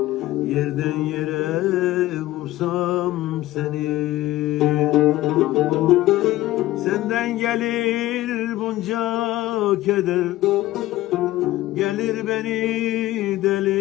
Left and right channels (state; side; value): quieter; right; 16.4 dB